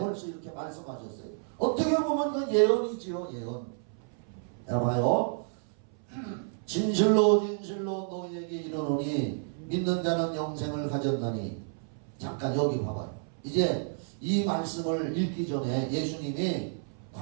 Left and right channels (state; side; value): silent; left; 58 dB below the other